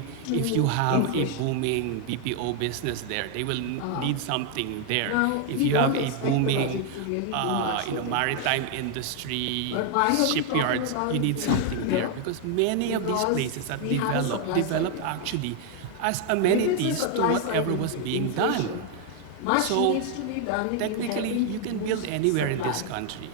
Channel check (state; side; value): different; both; correlation 0.00